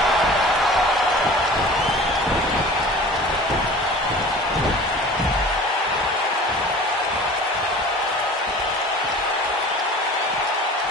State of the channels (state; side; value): normal; both; correlation 0.41